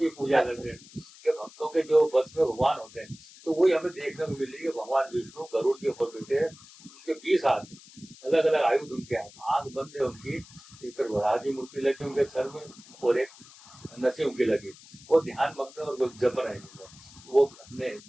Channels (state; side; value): noise; left; hiss, 21 dB below the sound